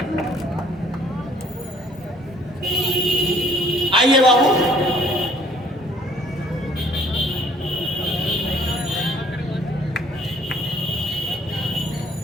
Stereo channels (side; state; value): both; normal; correlation 0.59